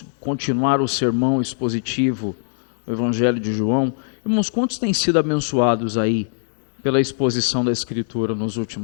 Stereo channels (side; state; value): right; silent; digital silence